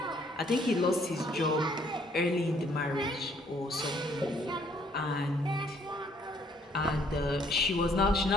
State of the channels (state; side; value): normal; both; correlation 0.64